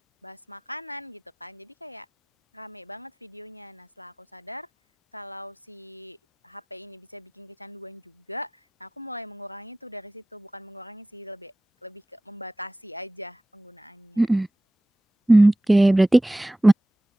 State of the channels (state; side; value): normal; both; correlation 0.95